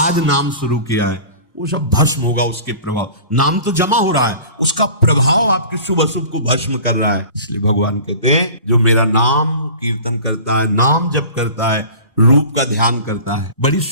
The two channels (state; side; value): inverted; both; correlation -0.41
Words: नाम शुरू किया है, वो सब भस्म होगा उसके प्रभाव। नाम तो जमा हो रहा है, उसका प्रभाव आपके शुभ अशुभ को भस्म कर रहा है। इसलिए भगवान कहते हैं जो मेरा नाम कीर्तन करता है, नाम जप करता है, रूप का ध्यान करता है। बड़ी